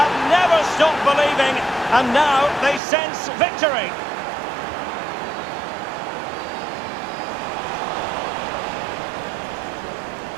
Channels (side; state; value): left; drops out; at 2.8 s